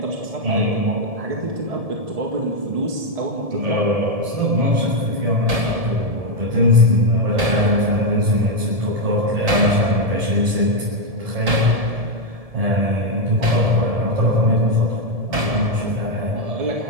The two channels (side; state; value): left; late; 1.7 ms